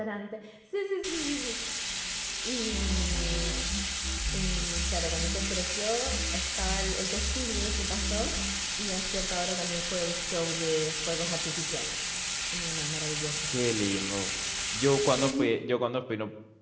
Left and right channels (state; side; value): identical; both; correlation 1.00